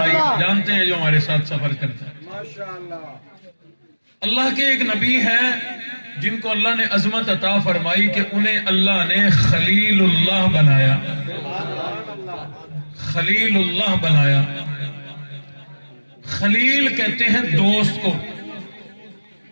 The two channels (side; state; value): both; inverted; correlation -1.00